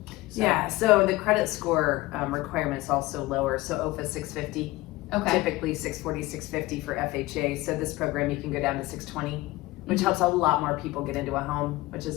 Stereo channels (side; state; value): right; quieter; 19.3 dB